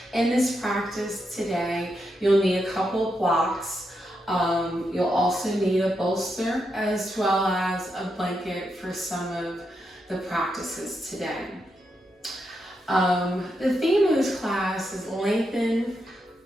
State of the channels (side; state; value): both; normal; correlation 0.83